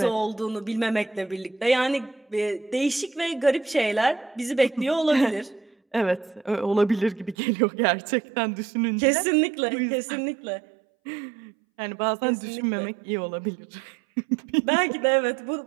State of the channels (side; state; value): left; drops out; at 7.4 s